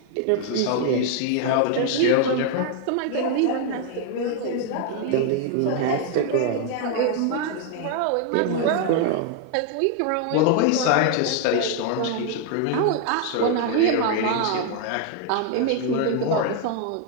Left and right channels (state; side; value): different; both; correlation 0.00